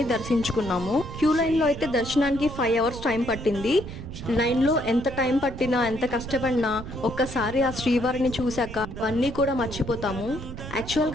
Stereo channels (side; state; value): right; noise; rumble, 10 dB below the sound